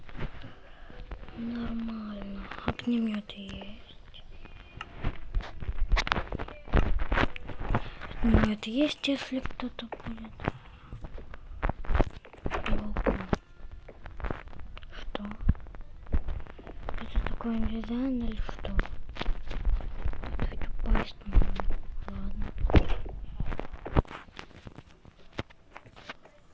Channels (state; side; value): identical; both; correlation 1.00